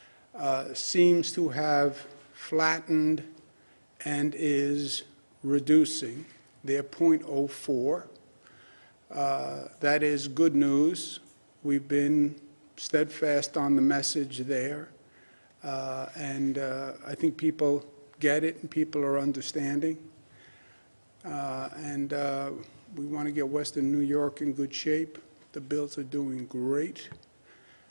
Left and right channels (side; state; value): both; inverted; correlation -1.00